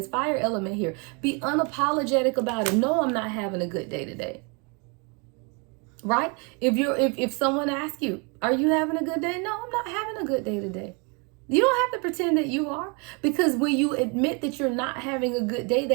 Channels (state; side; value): quieter; left; 32.8 dB